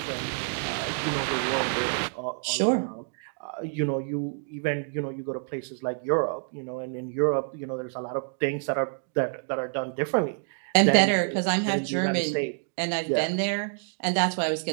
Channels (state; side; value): silent; left; 59 dB below the other